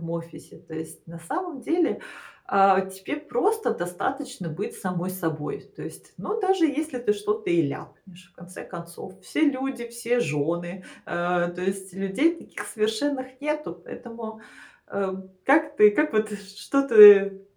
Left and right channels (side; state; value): both; identical; correlation 1.00